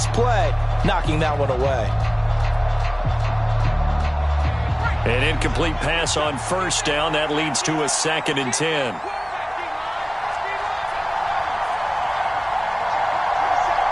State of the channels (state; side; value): identical; both; correlation 1.00